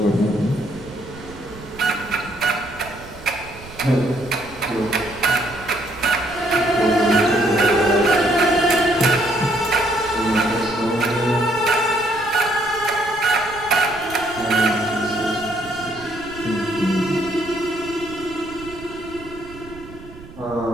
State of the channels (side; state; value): right; noise; rumble, 18 dB below the sound